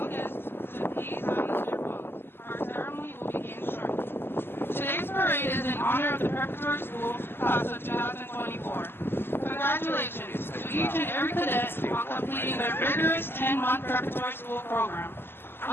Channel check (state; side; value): late; right; 0.11 ms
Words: guests to please silence their phones. Our ceremony will begin shortly. Today's parade is in honor of the Preparatory School class of 2024. Congratulations to each and every cadet on completing their rigorous 10-month preparatory school program.